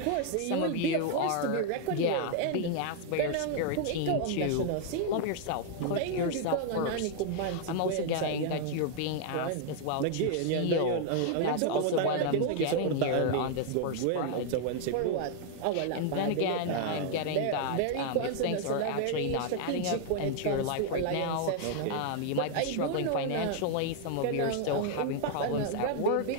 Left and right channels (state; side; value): different; both; correlation 0.00